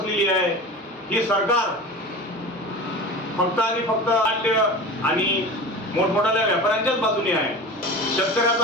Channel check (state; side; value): normal; both; correlation 0.33